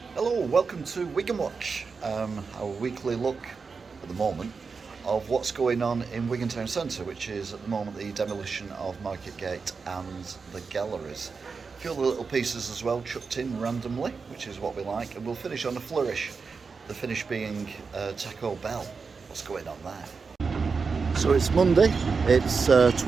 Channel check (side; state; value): left; quieter; 5.0 dB